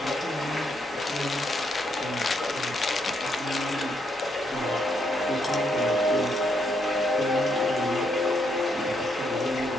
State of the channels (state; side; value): normal; both; correlation 0.76